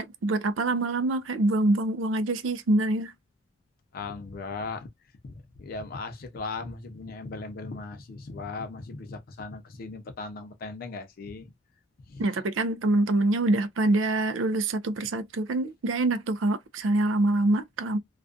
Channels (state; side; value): normal; both; correlation 0.57